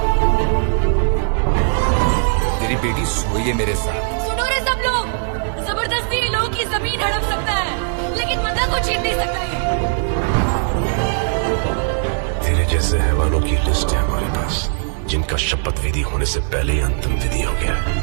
तेरी बेटी सोई है मेरे साथ। सुनो रे सब लोग, जबरदस्ती लोगों की जमीन हड़प सकता है, लेकिन मंदा को छीन नहीं सकता है। तेरे जैसे हैवानों की लिस्ट है हमारे पास, जिनका शपथ विधि होने से पहले ही अंतिम विधि हो गया।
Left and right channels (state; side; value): silent; left; 56 dB below the other